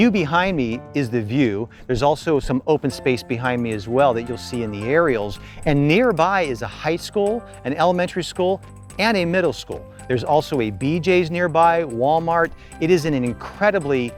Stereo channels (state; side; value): identical; both; correlation 1.00